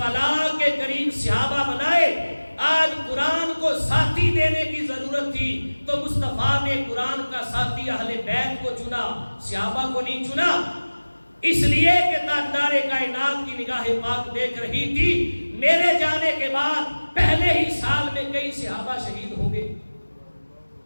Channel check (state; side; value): inverted; both; correlation -1.00